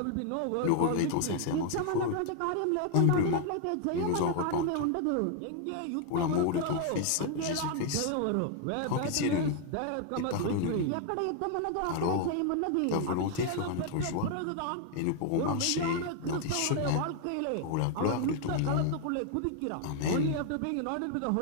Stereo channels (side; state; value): both; different; correlation 0.00